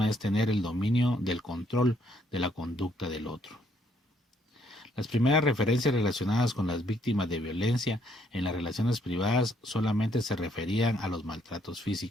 es tener el dominio del control de la conducta del otro. Las primeras referencias relacionadas con las víctimas de violencia en las relaciones privadas solamente se referían a los maltratos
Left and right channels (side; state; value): both; normal; correlation 0.69